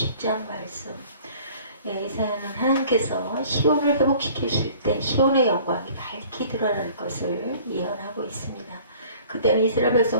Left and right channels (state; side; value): inverted; both; correlation -0.50